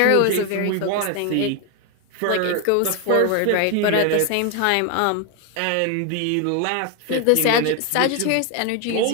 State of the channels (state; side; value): different; both; correlation 0.01